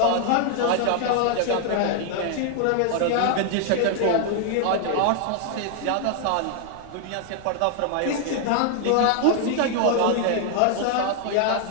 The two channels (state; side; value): different; both; correlation 0.00